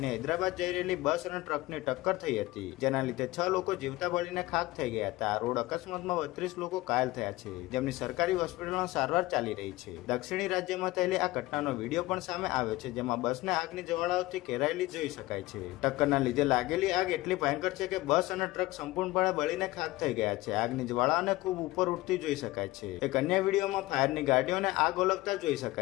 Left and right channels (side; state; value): right; quieter; 18.9 dB